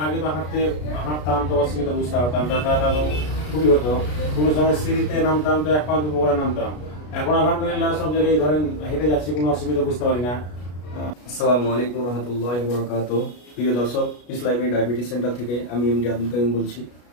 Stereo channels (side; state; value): right; late; 33 ms